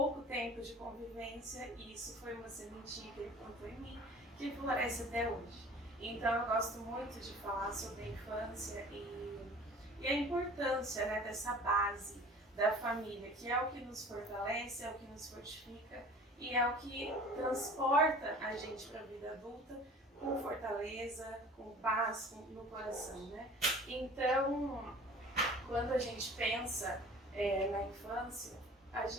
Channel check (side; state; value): both; normal; correlation 0.44